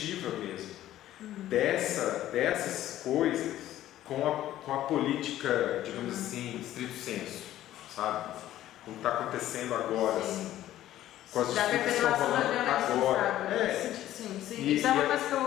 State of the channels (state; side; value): quieter; right; 13.4 dB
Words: mesmo, dessas coisas com a política, digamos assim, estrito senso, sabe? Como está acontecendo agora, assim, com as disputas que estão rolando agora. Sim. Isso é uma coisa que